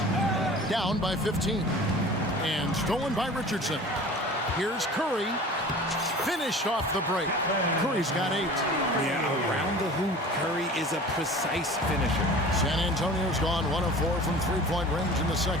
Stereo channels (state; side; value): normal; both; correlation 0.41